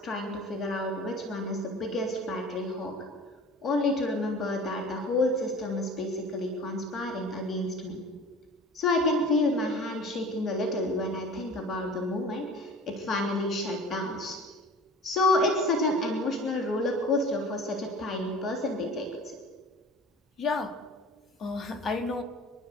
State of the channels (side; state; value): both; normal; correlation 0.41